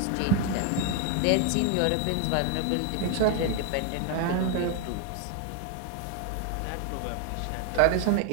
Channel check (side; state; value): both; different; correlation 0.00